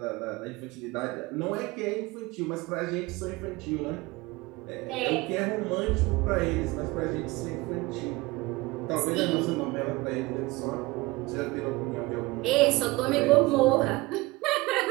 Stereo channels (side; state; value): left; quieter; 21.6 dB